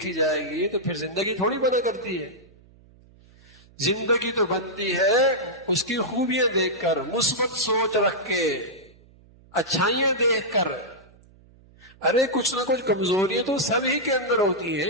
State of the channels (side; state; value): right; noise; hum, 27 dB below the sound